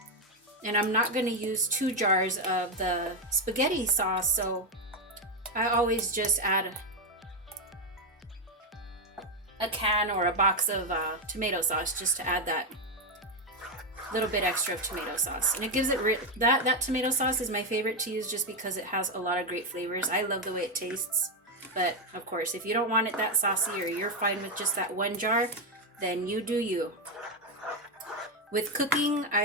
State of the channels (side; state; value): both; normal; correlation 0.06